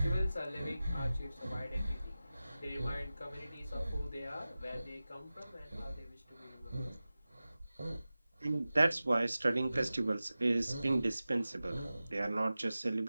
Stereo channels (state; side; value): inverted; both; correlation -0.96